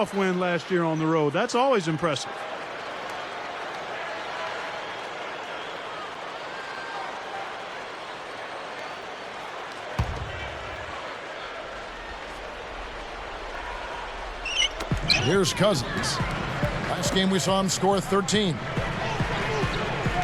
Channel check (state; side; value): identical; both; correlation 1.00